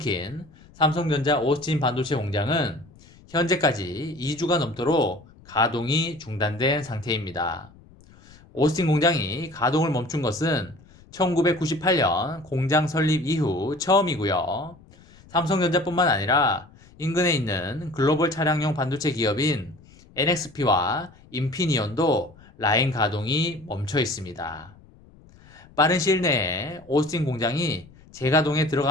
삼성전자 오스틴 반도체 공장은 현재까지 2주가 넘도록 가동이 중단된 상태입니다. 오스틴 공장이 가동을 멈춘 것은 1998년 공장 설립 이후 처음이고요. 삼성전자뿐만 아니라 인근에 있는 글로벌 차량용 반도체 기업인 NXP와 인피니온도 라인 가동이 멈춰 있습니다. 빠른 시일 내에 오스틴 공장이 재가동에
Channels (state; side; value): noise; left; rumble, 25 dB below the sound